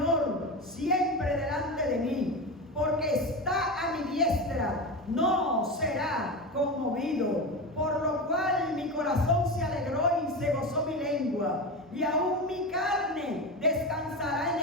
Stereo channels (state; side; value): normal; both; correlation 0.22